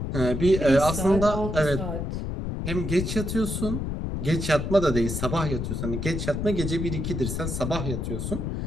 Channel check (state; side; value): noise; left; rumble, 3 dB below the sound